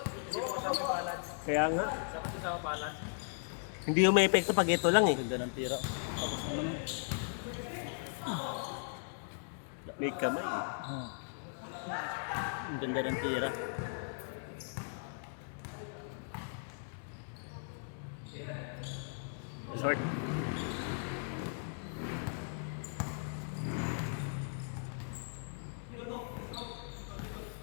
Hindi mo kasama yung balance. Kaya nga, Dapat kasama balance. hindi yung may epekto pag ito lang eh. Ganda ng tira. May kamay. Ang ganda ng tira. Short.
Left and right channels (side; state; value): right; silent; digital silence